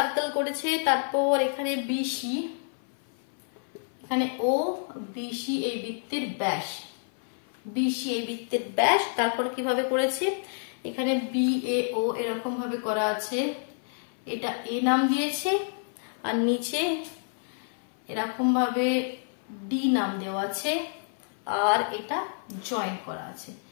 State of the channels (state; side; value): silent; right; 57 dB below the other